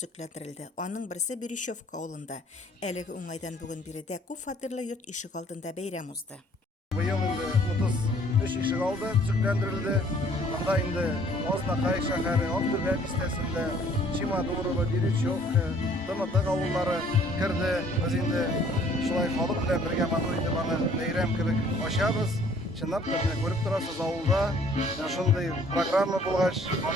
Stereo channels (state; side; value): normal; both; correlation 0.58